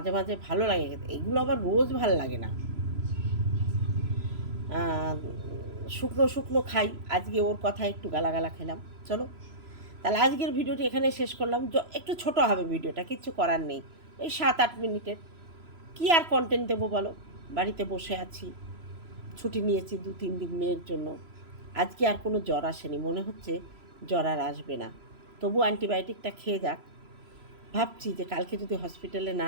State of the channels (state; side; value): late; left; 3.0 ms